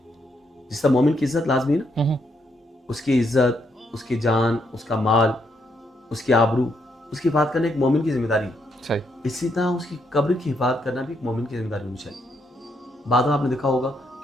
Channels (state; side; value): normal; both; correlation 0.76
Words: جس طرح مومن کی عزت لازمی ہے نا، اس کی عزت، اس کی جان، اس کا مال، اس کی آبرو، اس کی حفاظت کرنا ایک مومن کی ذمہ داری ہے. صحیح. اسی طرح اس کی قبر کی حفاظت کرنا بھی ایک مومن کی ذمہ داری ہونی چاہیے. بعد میں آپ نے دیکھا ہوگا